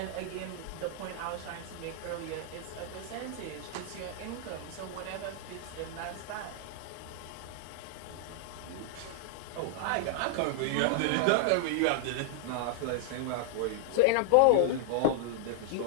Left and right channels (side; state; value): both; different; correlation -0.01